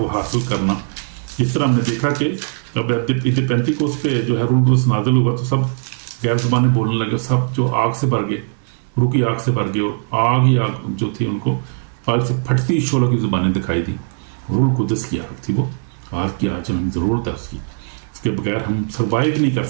हासिल करना। जिस तरह हमने देखा कि अब ईद पेंतीकोस्त पे जो है रूह कुदस नाज़िल हुआ तो सब गैर ज़बानें बोलने लगे, सब जो आग से भर गए, रूह की आग से भर गए, और आग ही आग जो थी उनको आग से फटती शोलों की ज़ुबानें दिखाई दी। रूह कुदस की आग थी वो, आग की आज हमें ज़रूरत है उसकी, उसके बगैर हम सर्वाइव नहीं कर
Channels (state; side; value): silent; left; 66 dB below the other